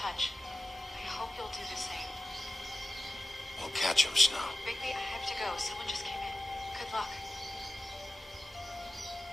I hope you'll do the same. We'll catch him, Snow. Bigby, I have to go. Someone just came in. Good luck.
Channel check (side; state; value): both; normal; correlation 0.95